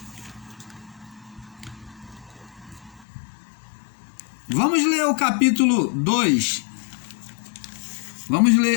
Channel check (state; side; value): drops out; right; at 3.1 s